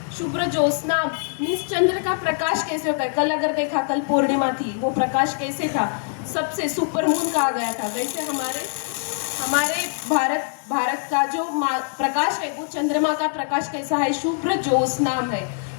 शुभ्र ज्योत्स्नाम मीन्स चंद्र का प्रकाश कैसे होता है. कल अगर देखा, कल पूर्णिमा थी, वो प्रकाश कैसे था? सबसे सुपर मून कहा गया था. वैसे हमारे भारत का जो प्रकाश है वो चंद्रमा का प्रकाश कैसा है? शुभ्र ज्योत्स्नाम है.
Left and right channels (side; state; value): right; silent; 63 dB below the other